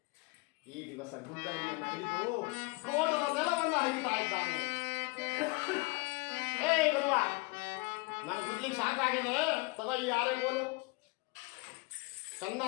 ಈ ದಿವಸ ಗುದ್ದಲಿಯನ್ನ ಹಿಡಿದು ತೋಟದ ನೆಲವನ್ನ ಹರಿತಾ ಇದ್ದಾನೆ. ಗುರುವ ನಾನು ಗುದ್ಲಿಕ್ಕೆ ಸಾಕಾಗಿದೆ, ತಗೋ ಈ ಹಾರೆ ಕೋಲು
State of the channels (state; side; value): quieter; right; 26.5 dB